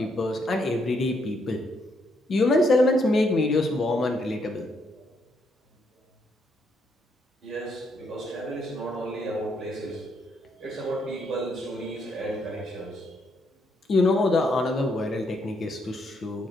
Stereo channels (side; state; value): both; normal; correlation 0.75